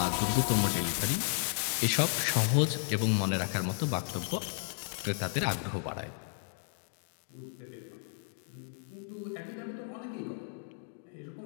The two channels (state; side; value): silent; right; 55 dB below the other